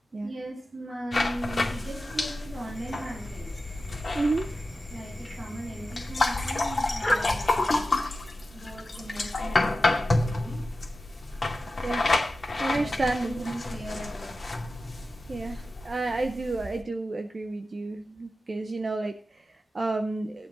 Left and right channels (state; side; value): normal; both; correlation 0.93